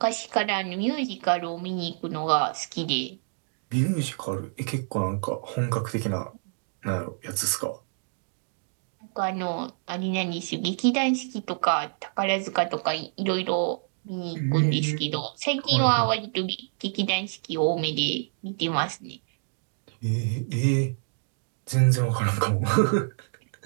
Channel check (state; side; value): silent; left; digital silence